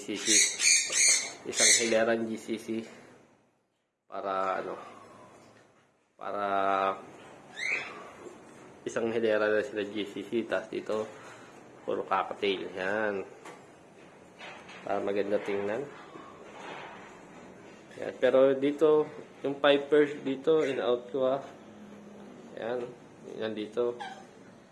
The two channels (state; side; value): identical; both; correlation 1.00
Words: Isang hileran GCC. Para para isang hilera na sila GCC. Tapos dito, puro cocktail. Yan. Para maganda tingnan. Yan. Pero dito, yung pipers dito, in-out ko Yan. Yan dito.